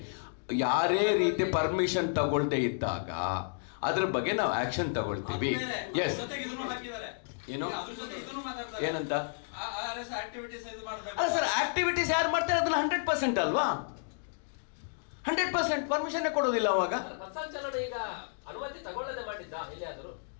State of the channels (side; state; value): right; silent; digital silence